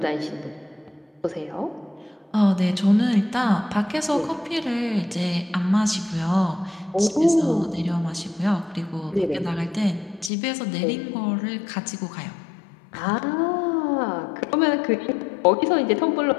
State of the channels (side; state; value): right; drops out; at 10.3 s